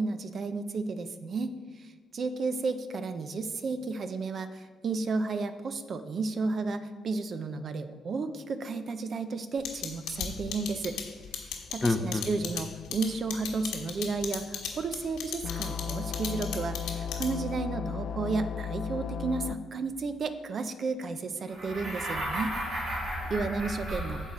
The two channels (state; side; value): normal; both; correlation 0.78